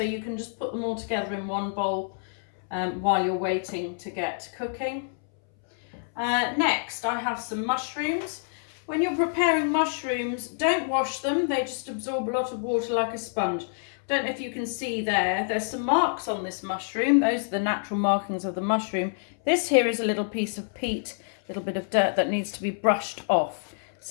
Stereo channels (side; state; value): right; silent; 60 dB below the other